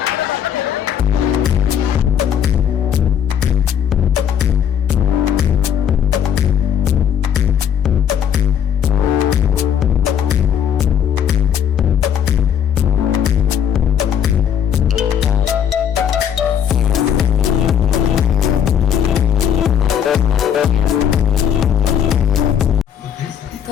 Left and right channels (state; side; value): quieter; right; 8.8 dB